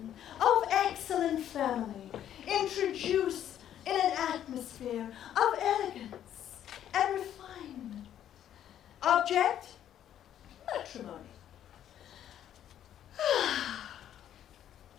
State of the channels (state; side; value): quieter; right; 10.7 dB